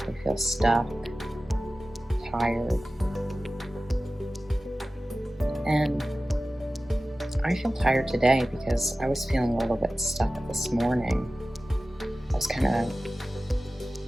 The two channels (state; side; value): normal; both; correlation 0.95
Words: they feel stuck, tired, and I feel tired today because I was feeling a little bit stuck this morning. I was kind of